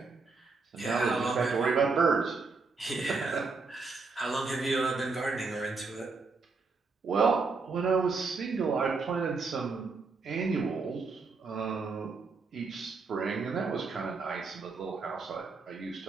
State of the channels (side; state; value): left; quieter; 4.3 dB